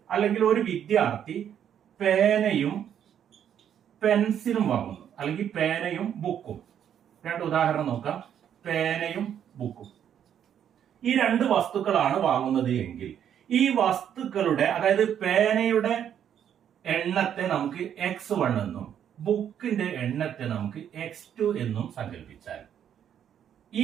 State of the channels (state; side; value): quieter; left; 9.3 dB